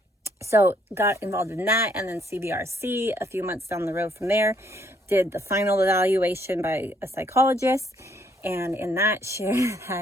so got involved in that, and then CBRC a few months down the road from there, did the final evaluation by a psychologist, and in that shared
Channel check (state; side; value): normal; both; correlation 0.68